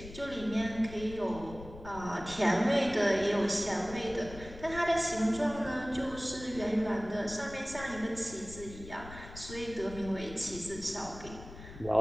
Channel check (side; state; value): left; noise; rumble, 14 dB below the sound